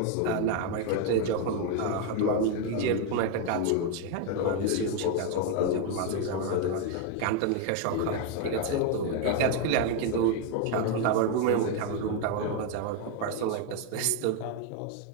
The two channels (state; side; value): different; both; correlation 0.01